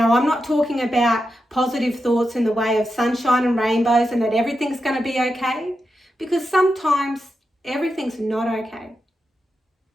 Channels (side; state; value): both; normal; correlation 0.88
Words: I'm not talking about positive thoughts in the way of sunshine and rainbows and that everything's going to be okay, because sometimes everything's not okay.